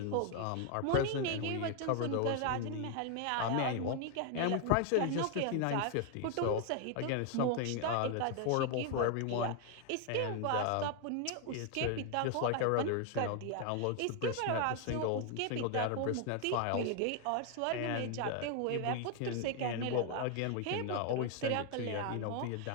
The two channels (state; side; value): different; both; correlation 0.01